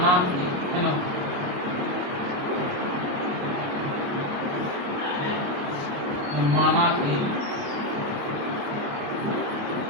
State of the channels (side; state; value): left; late; 28 ms